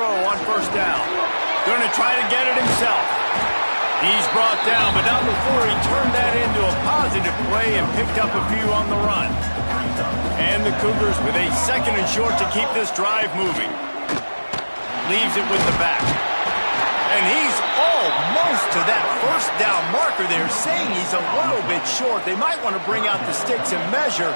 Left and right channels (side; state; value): both; inverted; correlation -1.00